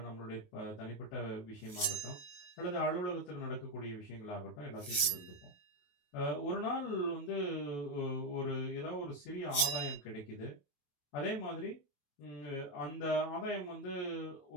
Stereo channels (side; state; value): right; late; 28 ms